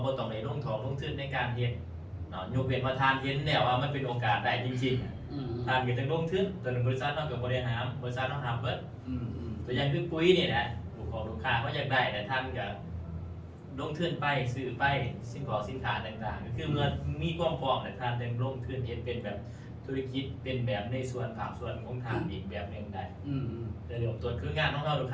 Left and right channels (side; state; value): both; identical; correlation 1.00